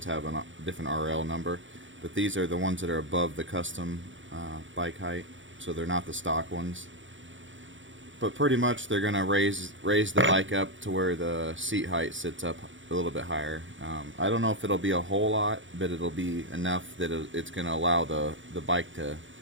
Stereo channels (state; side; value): late; left; 0.56 ms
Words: have a different RL number, but these are the ones that are above the custom bike height, so they're not the stock ones. But pretty much they're going to raise the bike up to where the seat height sits up a little bit higher. I don't know if it'll be a whole lot, but it'll be enough that it's going to allow the bike to